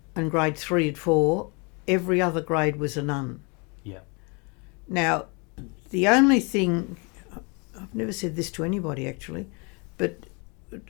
and grade 3 and 4. Every other grade was a nun. Yeah. Now, the only thing, I've never said this to anybody actually, but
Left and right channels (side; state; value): right; quieter; 32.0 dB